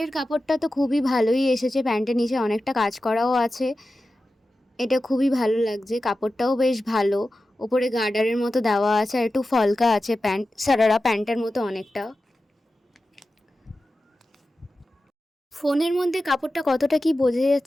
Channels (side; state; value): both; normal; correlation 0.93